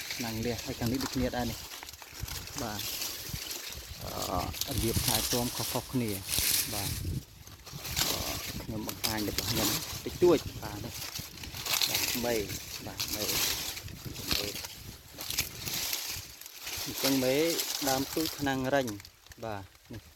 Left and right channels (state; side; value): identical; both; correlation 1.00